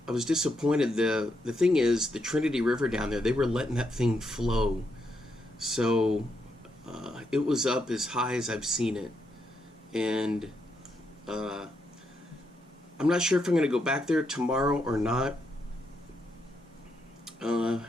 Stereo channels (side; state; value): both; normal; correlation 0.80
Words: I was disappointed. The thing is, the Trinity River down there, they were letting that thing flow. So it was up as high as I've seen it. And I'm not sure if I'm going to go back there tomorrow or not.